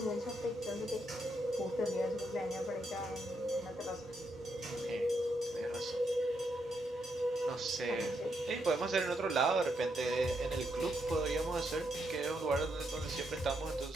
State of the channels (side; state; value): both; normal; correlation 0.79